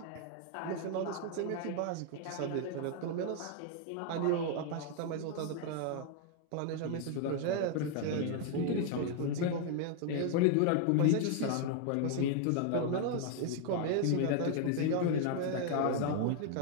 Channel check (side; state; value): both; different; correlation 0.00